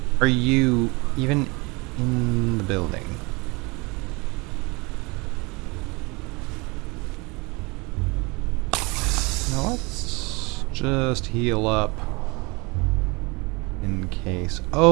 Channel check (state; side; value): quieter; left; 26.9 dB